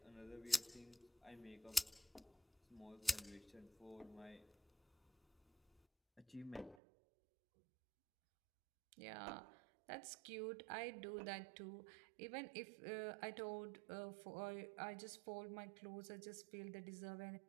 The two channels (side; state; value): left; drops out; at 6.8 s